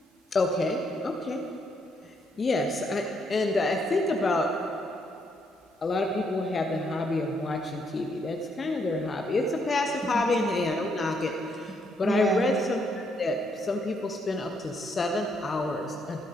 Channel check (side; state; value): both; normal; correlation 0.74